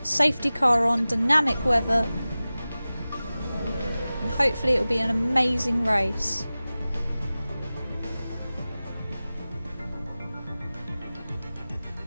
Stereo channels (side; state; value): both; inverted; correlation -0.97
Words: safety car on, dynamic weather. Hopefully it'll be an amazing race.